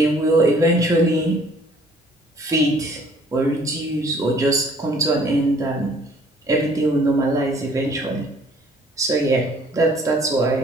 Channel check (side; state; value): both; normal; correlation 0.58